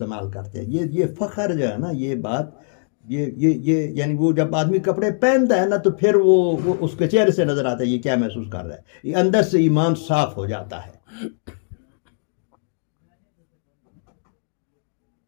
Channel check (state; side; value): silent; right; 61 dB below the other